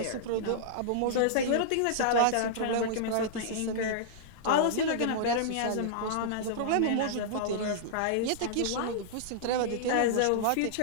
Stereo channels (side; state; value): both; different; correlation -0.02